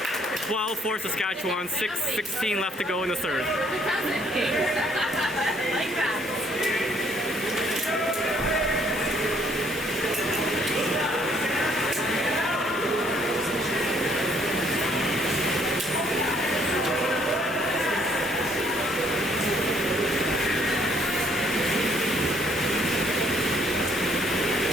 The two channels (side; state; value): both; normal; correlation 0.65